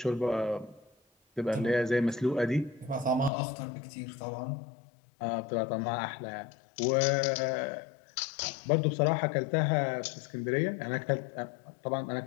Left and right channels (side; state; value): right; drops out; at 3.3 s